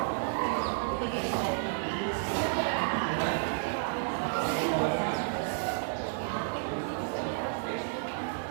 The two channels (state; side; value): silent; left; digital silence